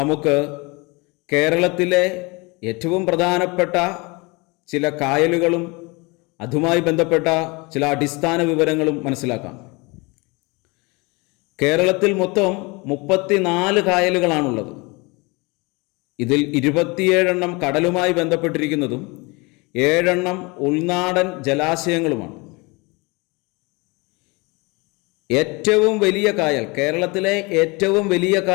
കേരളത്തിലെ ഏറ്റവും പ്രധാനപ്പെട്ട ചില കായലുകളും അതുമായി ബന്ധപ്പെട്ട ചില അടിസ്ഥാന വിവരങ്ങളും മനസ്സിലാക്കാം. കേരളത്തിൽ മൊത്തം 34 കായലുകളാണുള്ളത്. ഇതിൽ 27 കടലുമായി ബന്ധപ്പെട്ടിരിക്കുന്നതും 7 ഉൾനാടൻ ജലാശയങ്ങളുമാണ്. ഏറ്റവും വലിയ കായൽ, കേരളത്തിലെ ഏറ്റവും വലിയ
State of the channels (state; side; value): quieter; right; 26.8 dB